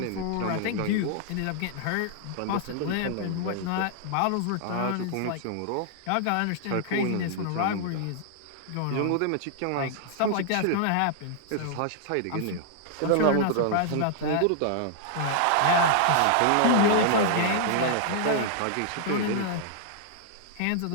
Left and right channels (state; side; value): different; both; correlation -0.01